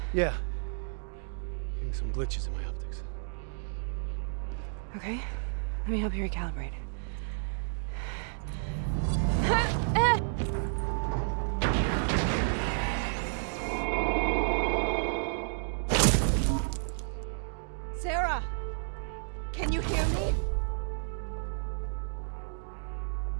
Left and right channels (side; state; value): left; silent; digital silence